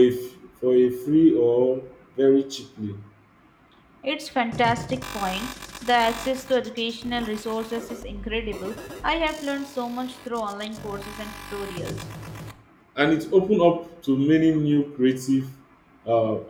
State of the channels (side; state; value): both; identical; correlation 1.00